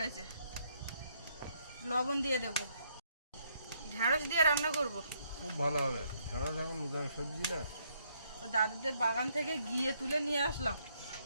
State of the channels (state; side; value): inverted; both; correlation -0.72